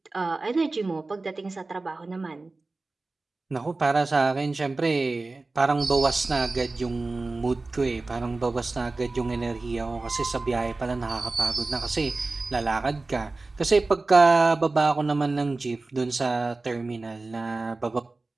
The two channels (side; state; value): left; quieter; 3.4 dB